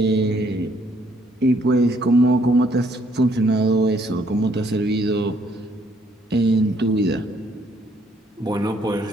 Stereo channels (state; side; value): normal; both; correlation 0.67